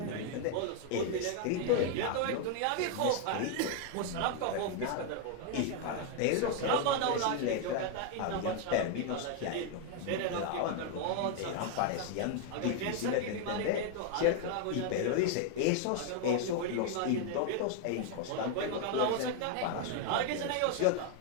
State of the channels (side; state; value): both; different; correlation 0.00